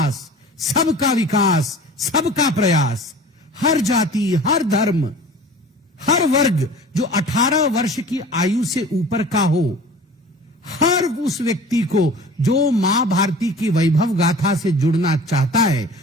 सबका विकास, सबका प्रयास, हर जाति, हर धर्म, हर वर्ग जो 18 वर्ष की आयु से ऊपर का हो, हर उस व्यक्ति को जो मां भारती की वैभव गाथा से जुड़ना चाहता है,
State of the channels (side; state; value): both; normal; correlation 0.42